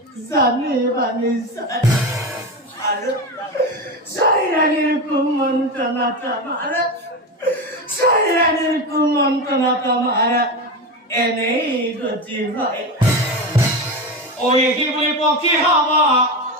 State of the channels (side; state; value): both; normal; correlation 0.19